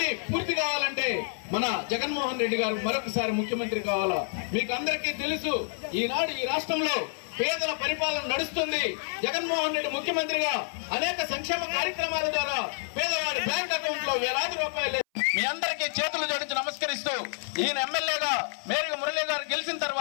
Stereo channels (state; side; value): silent; right; 58 dB below the other